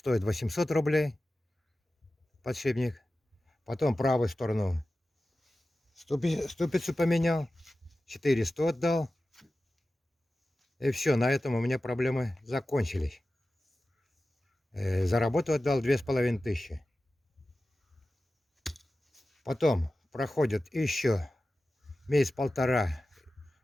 800 рублей подшипник. Потом правую сторону ступицу поменял, 400 отдал. И все, на этом у меня проблемы закончились. За работу отдал 2500. Потом проходит еще месяц-полтора,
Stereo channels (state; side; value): normal; both; correlation 0.95